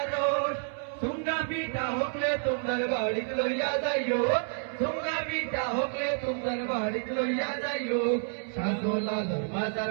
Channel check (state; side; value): silent; left; 58 dB below the other